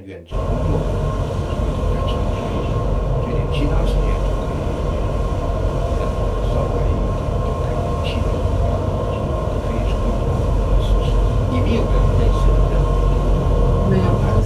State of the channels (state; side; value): identical; both; correlation 1.00